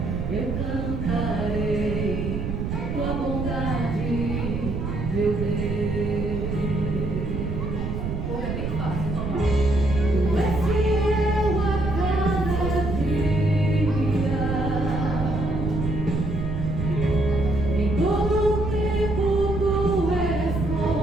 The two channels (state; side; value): noise; right; rumble, 3 dB below the sound